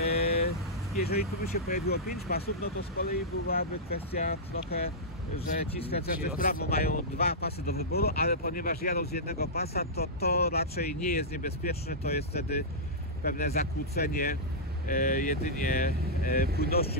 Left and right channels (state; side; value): normal; both; correlation -0.12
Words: Jeżeli tu by się pojawiło 5 pasów, no to z kolei byłaby kwestia trochę, że ci skręcający w prawo mają 2 pasy do wyboru, ale ponieważ jadą z jednego pasa, to raczej nie jest niebezpieczne, to jest wtedy pewne zakłócenie jedynie